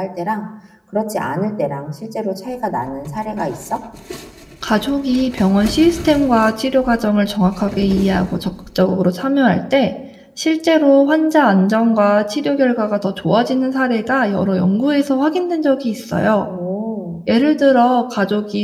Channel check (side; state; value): both; identical; correlation 1.00